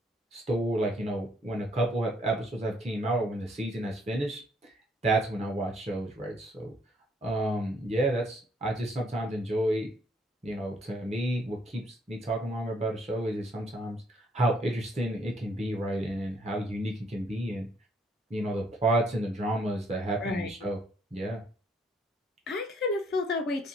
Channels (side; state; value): both; normal; correlation 0.67